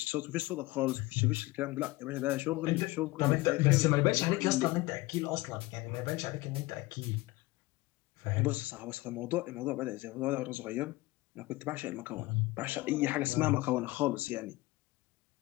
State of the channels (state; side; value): quieter; right; 20.7 dB